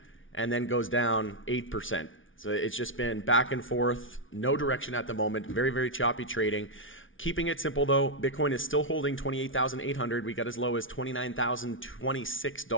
and then goes down 8%. So it's just been back and forth, no direction at the moment, very, very choppy trading. Keeping it simple though, Bitcoin is still holding 28,800. We got as low as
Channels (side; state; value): right; late; 0.57 ms